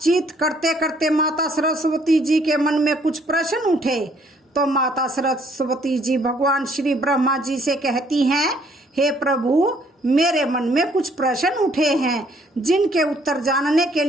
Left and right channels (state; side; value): normal; both; correlation 0.64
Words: करते करते माता सरस्वती जी के मन में कुछ प्रश्न उठे। तो माता सरस्वती जी भगवान श्री ब्रह्मा जी से कहती हैं, हे प्रभु, मेरे मन में कुछ प्रश्न उठे हैं जिनके उत्तर जानने के